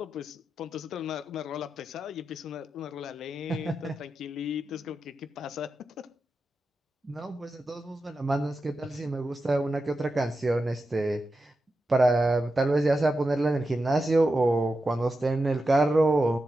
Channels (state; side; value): normal; both; correlation 0.90